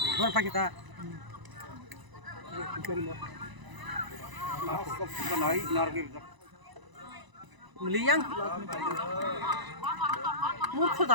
Berapa kita? Meliang. Muka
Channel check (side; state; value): left; late; 1.0 ms